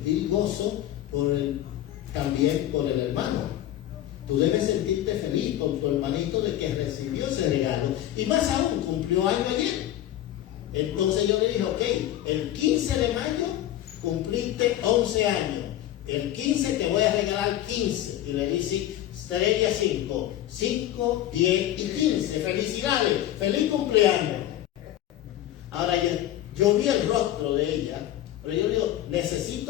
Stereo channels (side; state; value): right; quieter; 13.1 dB